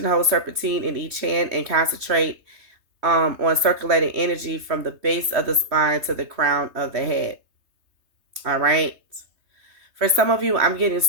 hold serpentine in each hand and concentrate on circulating energy from the base of the spine to the crown of the head. All right. For some of you, I'm getting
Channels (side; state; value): left; late; 3.3 ms